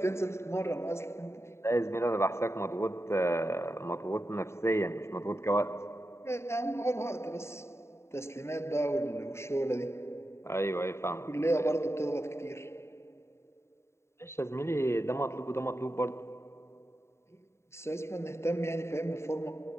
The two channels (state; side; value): late; right; 0.13 ms